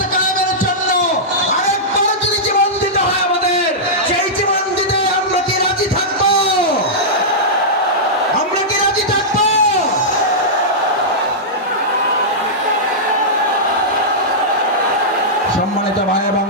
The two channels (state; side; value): normal; both; correlation -0.12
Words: কায়েমের জন্য আরেকবার যদি জীবন দিতে হয় আমাদের, সেই জীবন দিতে আমরা কি রাজি থাকবো? আমরা কি রাজি থাকবো? সম্মানিত ভাই এবং